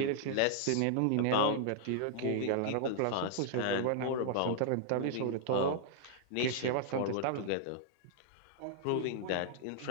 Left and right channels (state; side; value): different; both; correlation -0.01